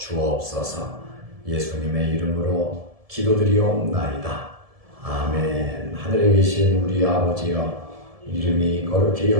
예수님의 이름으로 기도드리옵나이다. 아멘. 하늘에 계신 우리 아버지여, 이름이 거룩히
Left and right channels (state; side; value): late; left; 1.7 ms